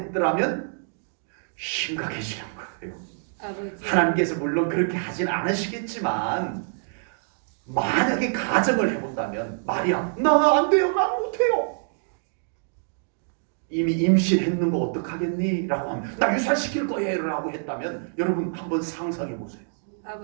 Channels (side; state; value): left; silent; digital silence